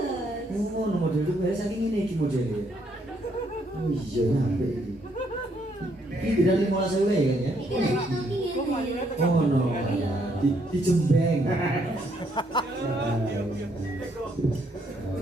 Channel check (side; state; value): both; normal; correlation 0.71